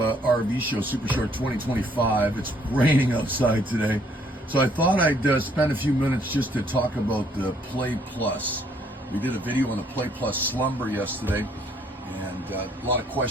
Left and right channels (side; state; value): both; normal; correlation 0.65